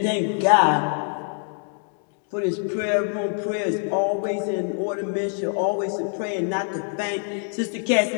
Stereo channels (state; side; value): silent; right; 58 dB below the other